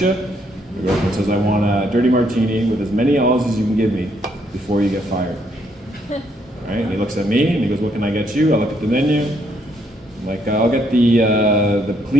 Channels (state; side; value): normal; both; correlation 0.72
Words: you? The girlfriend says, I want a dirty martini with as many olives as you can give me before you get fired. Right? And he looks at me and he goes, what can I get you? I look at the menu. I'm like, I'll get the